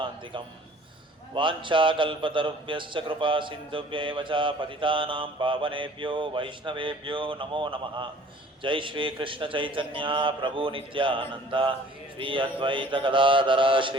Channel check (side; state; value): both; normal; correlation 0.51